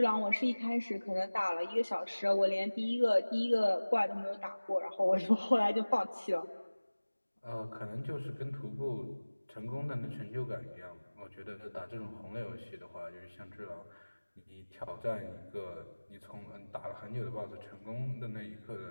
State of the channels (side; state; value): both; inverted; correlation -1.00